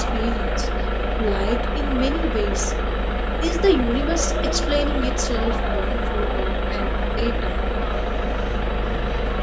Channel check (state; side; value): identical; both; correlation 1.00